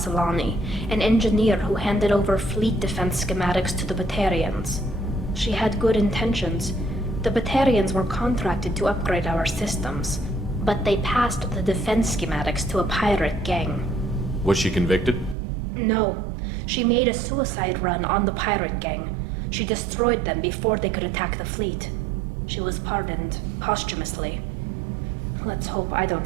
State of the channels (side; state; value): left; drops out; at 15.4 s